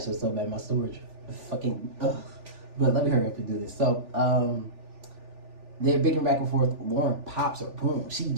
it's so bad, my storage. Fucking, ugh. But let me hurry up and do this. So, they're bickering back and forth. Lauren pops her, boom. She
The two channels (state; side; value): late; left; 3.4 ms